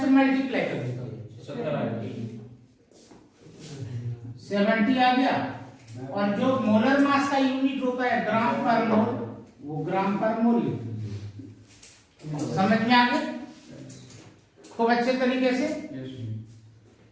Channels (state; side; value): identical; both; correlation 1.00